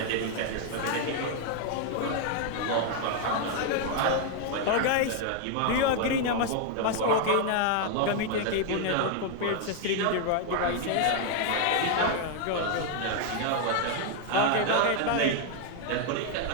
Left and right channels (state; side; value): different; both; correlation 0.00